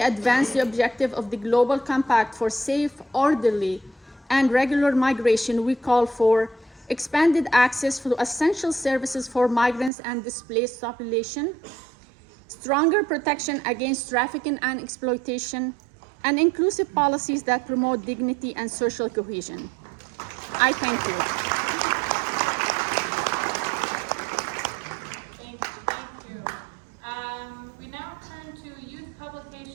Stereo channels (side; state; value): left; drops out; at 9.9 s